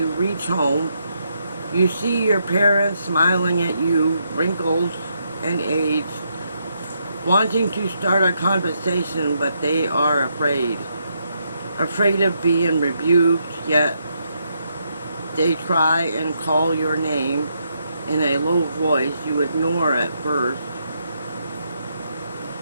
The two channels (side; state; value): both; inverted; correlation -0.78